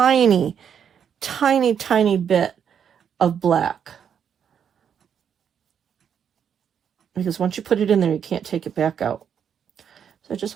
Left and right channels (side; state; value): left; quieter; 8.1 dB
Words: bit of black. Because once you put it in there, you can't take it back out. So I